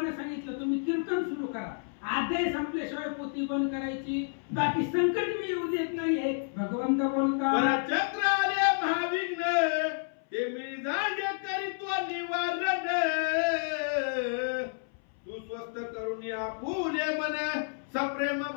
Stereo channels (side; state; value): right; silent; 58 dB below the other